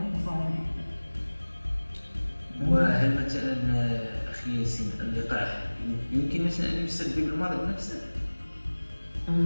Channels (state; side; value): inverted; both; correlation -1.00